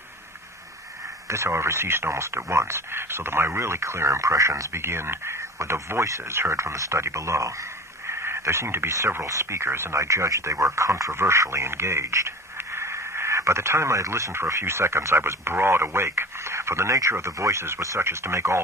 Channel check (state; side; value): normal; both; correlation 0.37